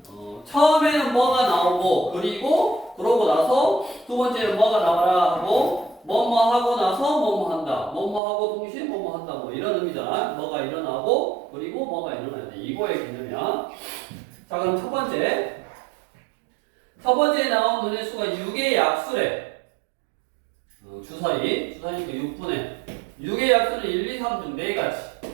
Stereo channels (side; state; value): left; drops out; at 8.2 s